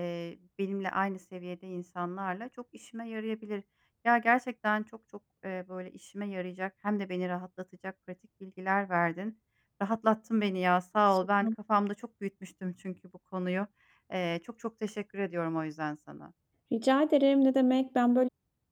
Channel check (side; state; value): both; identical; correlation 1.00